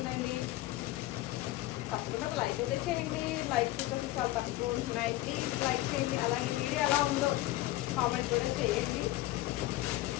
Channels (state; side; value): quieter; right; 17.0 dB